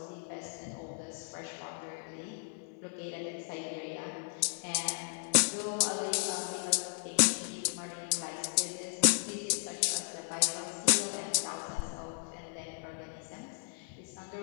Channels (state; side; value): silent; right; 54 dB below the other